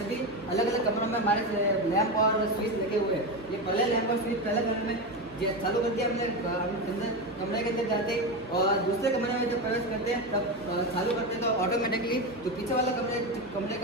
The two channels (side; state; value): both; normal; correlation 0.16